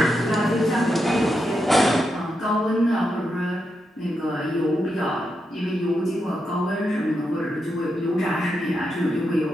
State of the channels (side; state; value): both; normal; correlation 0.85